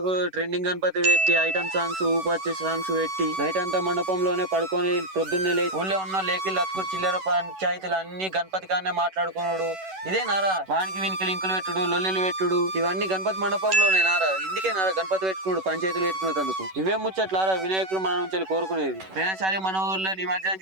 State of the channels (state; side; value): late; left; 11 ms